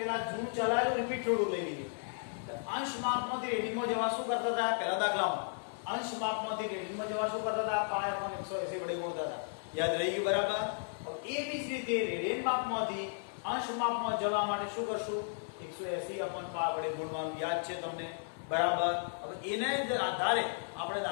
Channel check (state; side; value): silent; right; digital silence